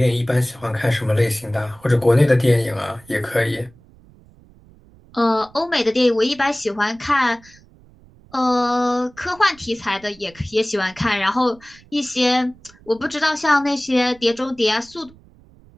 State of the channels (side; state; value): right; noise; rumble, 26 dB below the sound